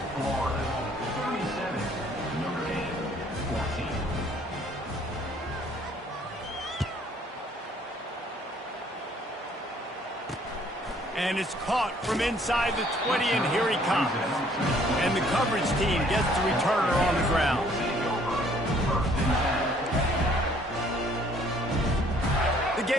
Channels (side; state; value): both; normal; correlation 0.61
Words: Florida 37, Notre Dame 14. And it's caught from inside the 20, and here he comes. And the coverage team gets the returner on the ground. The